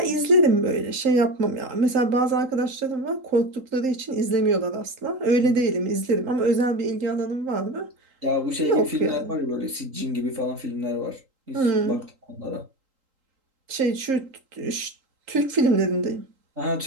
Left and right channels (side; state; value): left; late; 3.8 ms